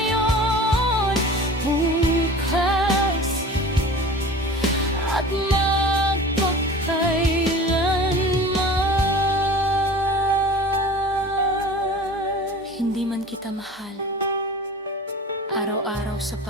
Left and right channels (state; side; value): normal; both; correlation 0.40